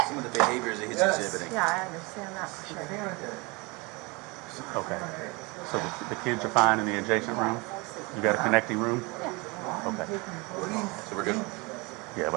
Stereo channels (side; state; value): left; quieter; 26.8 dB